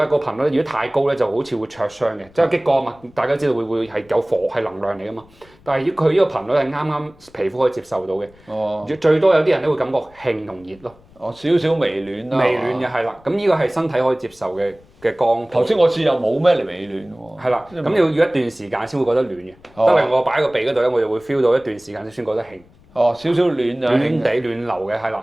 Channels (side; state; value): left; noise; rumble, 28 dB below the sound